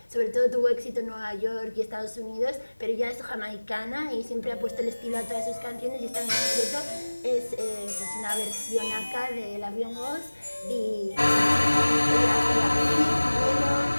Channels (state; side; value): inverted; both; correlation -1.00